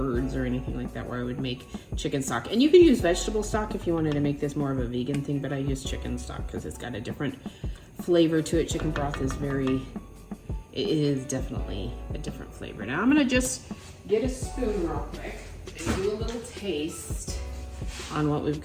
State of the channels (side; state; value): both; identical; correlation 1.00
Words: or anything like that where I would make chicken stock. And you could use vegetable stock if you wanted to make this more of a vegan thing, but I use chicken stock because it's got a different flavor to it. Chicken broth is it is definitely a different flavor. Now I'm gonna just get a spoon real quick and do a little taste on what we've